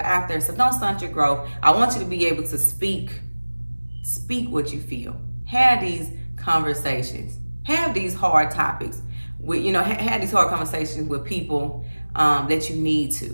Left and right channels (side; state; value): both; inverted; correlation -1.00